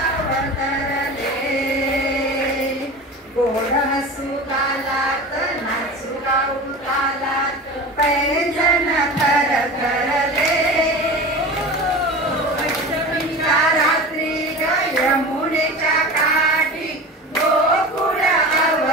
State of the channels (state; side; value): normal; both; correlation 0.32